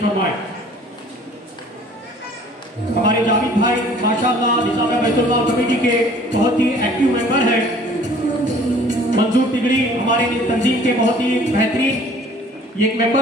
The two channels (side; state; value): both; normal; correlation 0.52